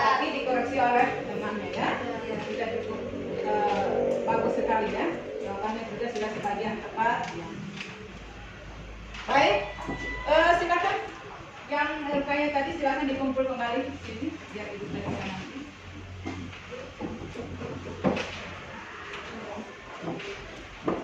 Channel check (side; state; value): both; identical; correlation 1.00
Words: dikoreksi oleh temannya ya. Sudah cukup bagus sekali ya. Jawabannya juga sudah sebagian tepat. Ya. Baik, silakan yang rupanya tadi silakan dikumpul kembali di sini biar ibu saya bisa nanti.